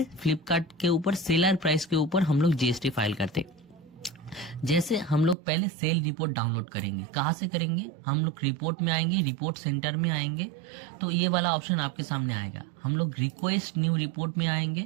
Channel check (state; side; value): drops out; left; at 5.4 s